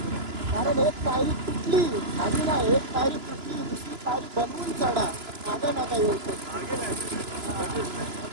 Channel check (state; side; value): late; left; 2.9 ms